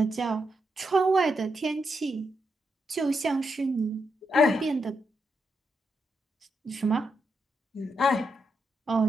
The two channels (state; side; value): normal; both; correlation 0.83